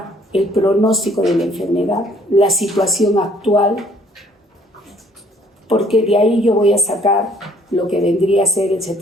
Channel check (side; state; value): both; normal; correlation 0.61